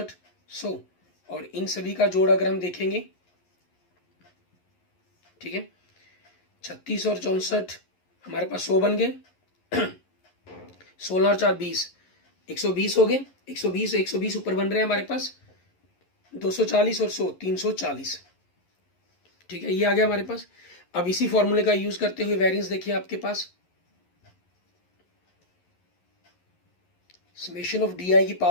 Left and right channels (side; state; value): right; late; 11 ms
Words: 100, और इन सभी का जोड़ अगर हम देखेंगे, ठीक है, 36 और 64 हमारे पास 100 बन गए, 16 और 4 20, 120 हो गए, 120 120 ऊपर बन रहे हैं हमारे पास 240 और 100 340, ठीक है, ये आ गया हमारे पास। अब इसी फॉर्मूले का यूज करते हुए वेरिएंस देखिए आपके पास, समेशन ऑफ डी आई की